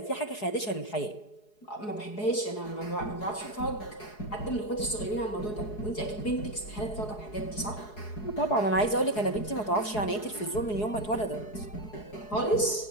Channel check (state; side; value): late; right; 4.7 ms